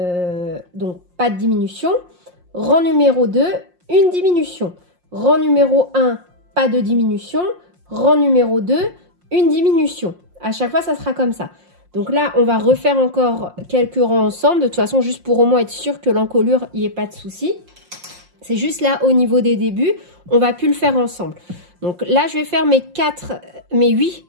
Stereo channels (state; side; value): late; left; 5.6 ms